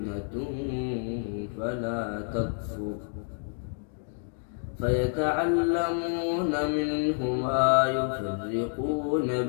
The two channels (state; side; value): silent; right; 59 dB below the other